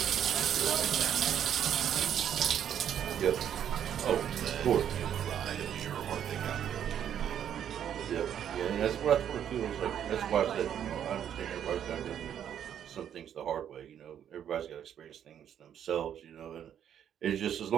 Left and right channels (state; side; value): quieter; left; 9.5 dB